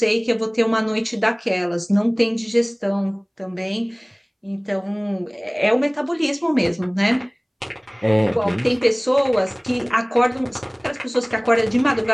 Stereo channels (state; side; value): identical; both; correlation 1.00